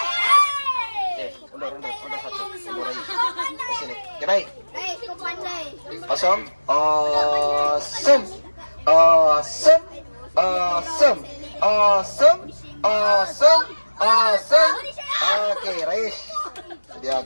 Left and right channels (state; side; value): inverted; both; correlation -1.00